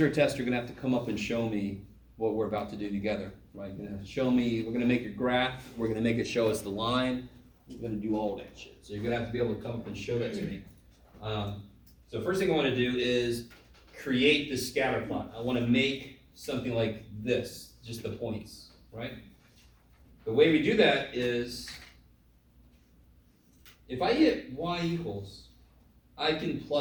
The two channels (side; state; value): both; identical; correlation 1.00